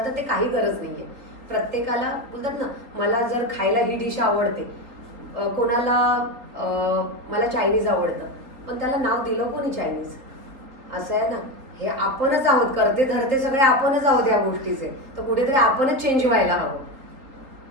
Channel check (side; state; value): left; late; 3.7 ms